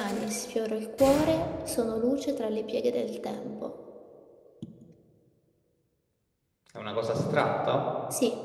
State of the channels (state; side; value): identical; both; correlation 1.00